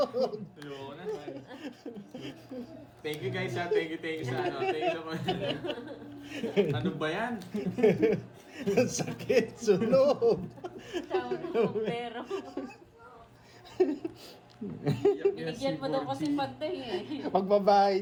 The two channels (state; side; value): identical; both; correlation 1.00